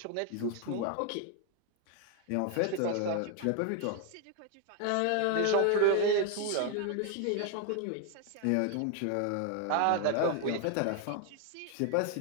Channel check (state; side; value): different; both; correlation 0.01